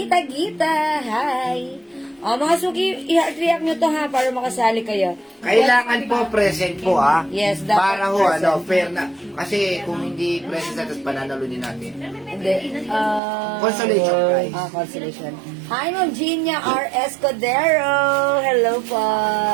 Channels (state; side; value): drops out; left; at 13.2 s